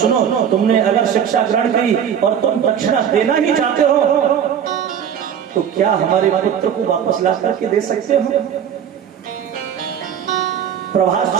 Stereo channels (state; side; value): quieter; left; 8.6 dB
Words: तुमने अगर शिक्षा ग्रहण की और तुम दक्षिणा देना ही चाहते हो तो क्या हमारे पुत्र को वापस ला करके दे सकते हो? प्रभास